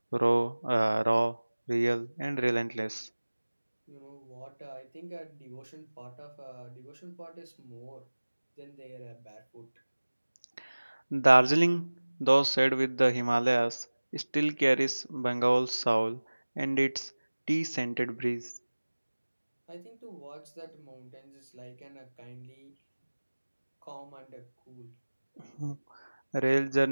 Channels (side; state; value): both; inverted; correlation -1.00